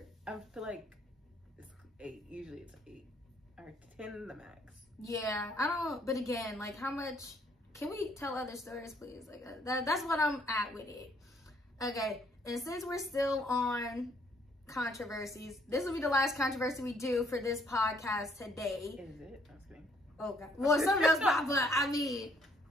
I feel like it's 8. Usually it's 8 or 10 the max. Yeah, I don't. But again, like, how much? Can we tell other stories, please? Like, that's what I'm at with it. Okay, and since we're still on controversies, this will be the last controversy we do for this podcast today. Is it? I was kidding. Oh God. Well, something else pop up. I mean,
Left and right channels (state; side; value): normal; both; correlation 0.66